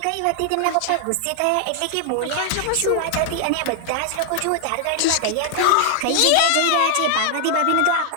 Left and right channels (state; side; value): different; both; correlation 0.00